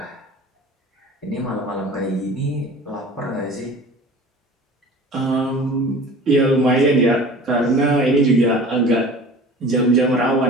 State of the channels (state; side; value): normal; both; correlation 0.42